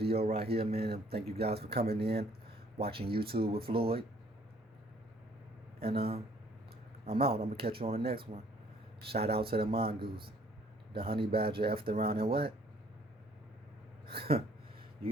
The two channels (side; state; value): both; normal; correlation 0.60